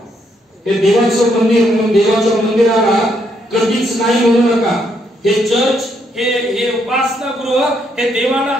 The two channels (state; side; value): normal; both; correlation 0.74